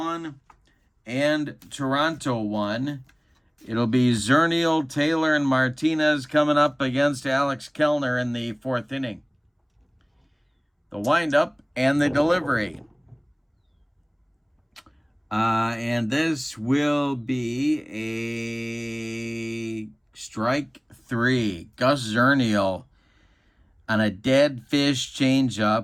and Toronto 1. It'll be Zernial, Taylor, and Martinez coming up against Alex Kellner in the 4th inning. The windup and the delivery. And this will be a strike 3. Gus Zernial on a dead fish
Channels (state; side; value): identical; both; correlation 1.00